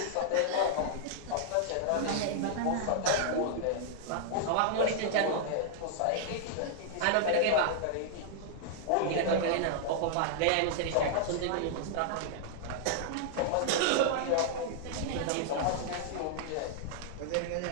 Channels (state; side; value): different; both; correlation -0.01